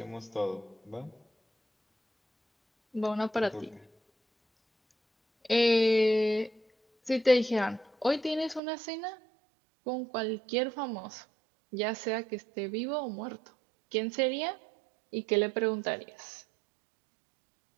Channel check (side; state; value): left; drops out; at 8.6 s